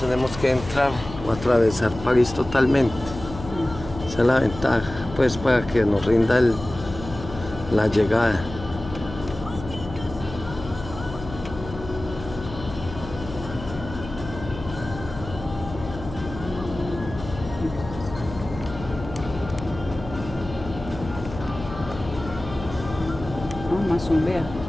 que entrar o atravesar París totalmente. Esa es la ventaja, pues para que nos rinda la llegada. No, más un vea.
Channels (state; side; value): noise; left; hum, 12 dB below the sound